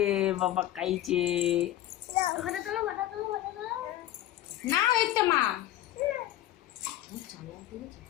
বাবা খাইছে। না ওই তো মা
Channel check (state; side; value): quieter; right; 13.8 dB